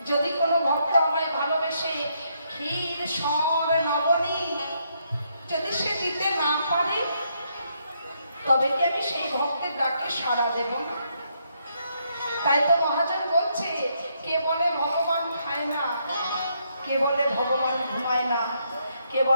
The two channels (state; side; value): inverted; both; correlation -0.75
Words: যদি কোনো ভক্ত আমায় ভালোবেসে ক্ষীর সর নবনী যদি সে দিতে না পারে, তবে কি আমি সেই ভক্তের ডাকে সাড়া দেব না? তাই তো মহাজন বলছে, কে বলে ভগবান খায় না, কে বলে ভগবান ঘুমায় না, কে